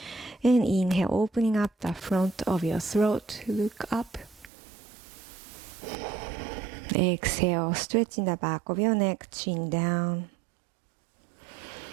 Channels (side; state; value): left; drops out; at 4.5 s